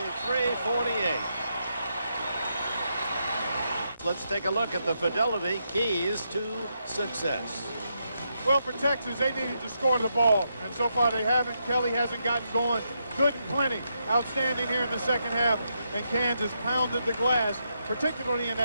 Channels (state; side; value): inverted; both; correlation -0.81